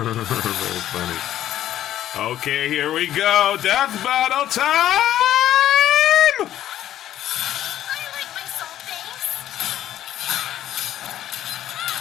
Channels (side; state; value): right; quieter; 12.2 dB